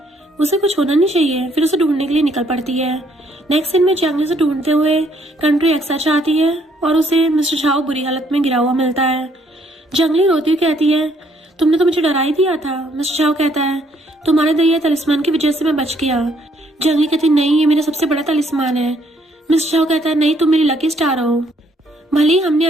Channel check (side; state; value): both; normal; correlation 0.68